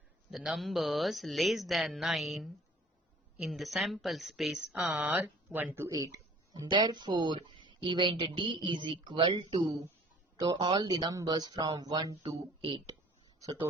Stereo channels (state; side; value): normal; both; correlation 0.51